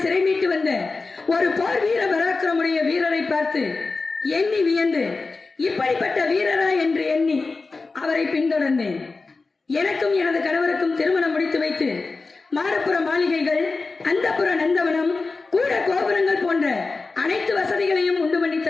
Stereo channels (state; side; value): quieter; right; 3.9 dB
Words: சிறை மீட்டு வந்த ஒரு போர் வீர பராக்கிரமுடைய வீரரை பார்த்து எண்ணி வியந்து இப்படிப்பட்ட வீரரா என்று எண்ணி அவரை பின்தொடர்ந்தேன். எனக்கும் எனது கணவருக்கும் திருமணம் முடித்து வைத்து மாடப்புற மாளிகைகள், அந்தப்புற நந்தவனம், கூட கோபுரங்கள் போன்ற அனைத்து வசதிகளையும் உண்டு பண்ணி